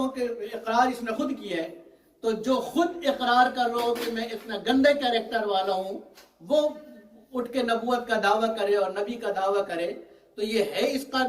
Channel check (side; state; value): both; identical; correlation 1.00